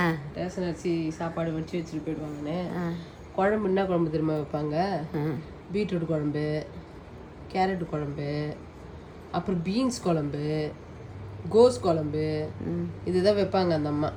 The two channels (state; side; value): identical; both; correlation 1.00